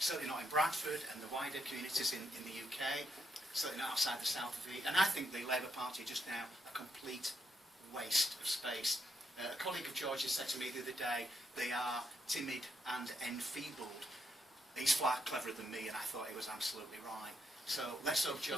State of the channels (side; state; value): both; normal; correlation 0.77